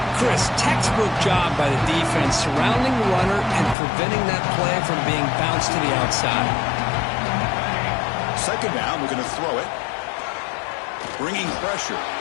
Chris, textbook job by the defense surrounding the runner and preventing that play from being bounced to the outside. Second down, we're going to throw it. Bringing pressure.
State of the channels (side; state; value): right; drops out; at 3.8 s